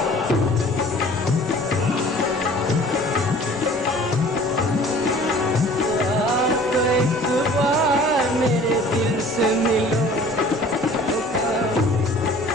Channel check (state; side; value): normal; both; correlation 0.49